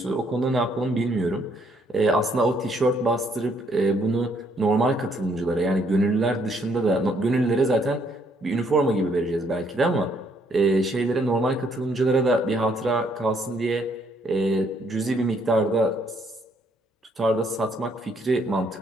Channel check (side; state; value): both; normal; correlation 0.69